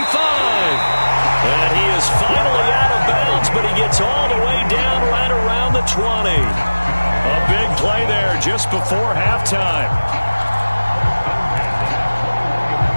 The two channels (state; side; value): inverted; both; correlation -1.00